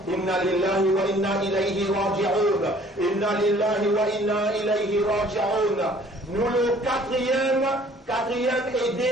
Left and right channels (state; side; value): normal; both; correlation 0.55